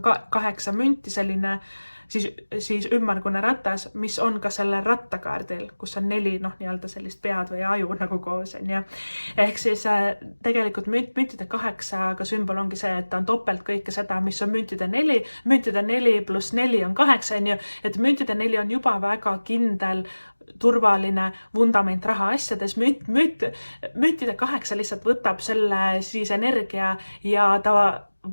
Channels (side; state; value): both; inverted; correlation -1.00